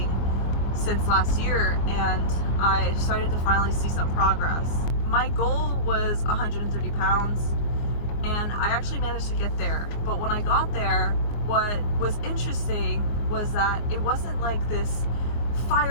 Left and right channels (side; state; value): right; late; 24 ms